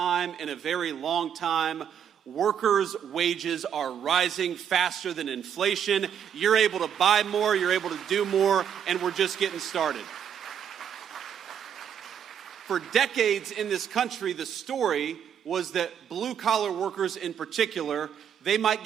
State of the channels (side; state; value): left; quieter; 8.6 dB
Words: in a very long time, workers' wages are rising faster than inflation. You're able to buy more, you're able to do more, and we're just getting started. For decades in this country, the story was that blue-collar workers in particular, they might